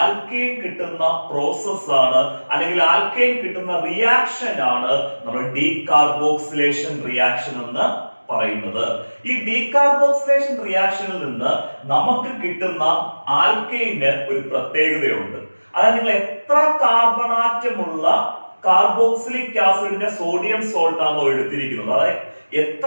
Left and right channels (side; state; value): both; inverted; correlation -1.00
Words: കിട്ടുന്ന പ്രോസസ് ആണ്, അല്ലെങ്കിൽ ആൽക്കൈൻ കിട്ടുന്ന റിയാക്ഷൻ ആണ് നമ്മൾ ഡീകാർബോക്സിലേഷൻ റിയാക്ഷൻ എന്ന് പറയുന്നത്. ഈ ഡീകാർബോക്സിലേഷൻ റിയാക്ഷനിൽ നിന്ന് നമുക്ക് കിട്ടുന്ന ആൽക്കൈന് ഒരു പ്രത്യേകതയുണ്ട്. അതായത് നിങ്ങൾ എത്ര കാർബണാറ്റമുള്ള കാർബോക്സിലിക് ആസിഡിന്റെ സോഡിയം സോൾട്ട് ആണോ എടുത്തിരിക്കുന്നത്, അതായത്